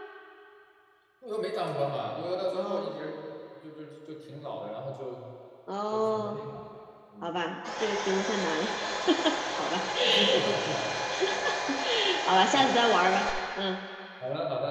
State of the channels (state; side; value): identical; both; correlation 1.00